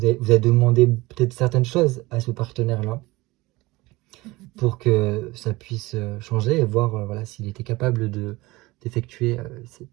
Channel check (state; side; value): quieter; left; 21.0 dB